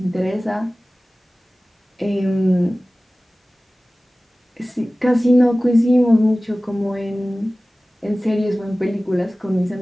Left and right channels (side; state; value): both; normal; correlation 0.97